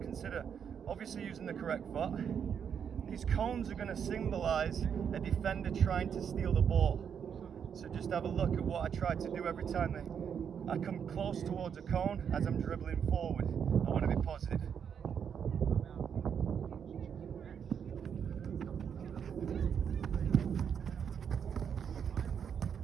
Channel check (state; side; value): quieter; left; 7.6 dB